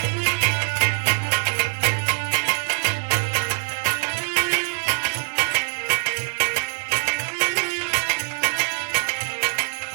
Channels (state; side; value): silent; left; digital silence